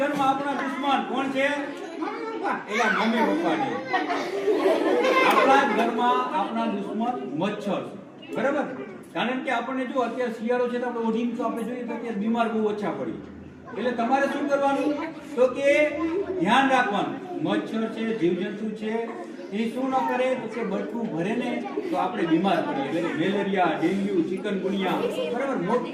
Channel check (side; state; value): both; identical; correlation 1.00